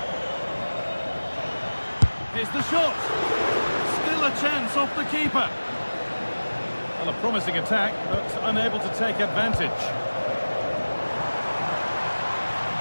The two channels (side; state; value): both; inverted; correlation -1.00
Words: Here's the shot. Still a chance off the keeper. Well, a promising attack, but unable to take advantage.